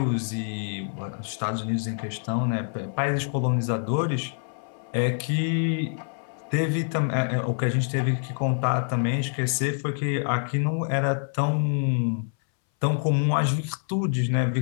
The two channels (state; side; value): silent; right; 61 dB below the other